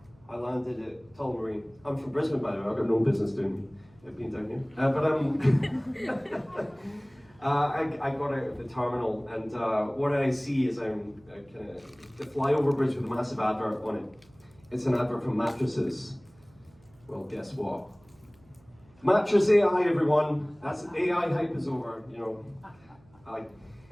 I landed at Tullamarine. I'm from Brisbane, by the way. I've got no business doing being down here. I got out of the terminal, and what I see is I'm kind of the flyover bridge with a massive advert on it. It's an advert for mattresses. Well, guess what? Mattress AI, everyone. That's AI hype is over. You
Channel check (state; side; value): noise; right; hum, 29 dB below the sound